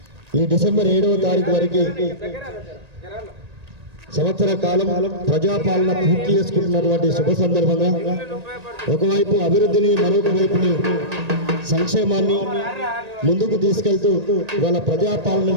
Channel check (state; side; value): late; left; 1.8 ms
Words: డిసెంబర్ 7వ తారీఖు వరకు సంవత్సర కాలం ప్రజాపాలన పూర్తి చేసుకుంటున్నటువంటి శుభ సందర్భంగా ఒకవైపు అభివృద్ధిని మరొక వైపుని సంక్షేమాన్ని ముందుకు తీసుకెళ్తూ ఇవాళ ప్రజాపాలన